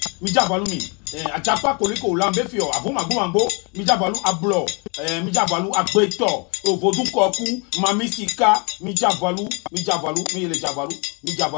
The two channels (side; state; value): right; quieter; 33.3 dB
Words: mi Njavalu mi ajapa koliko lambe fio avuma gbo mi Njavalu ablo mi Njavalu agbeto ovodu koku mami sika mi Njavalu mi le